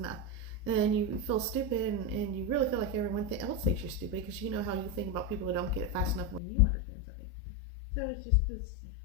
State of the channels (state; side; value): drops out; right; at 6.4 s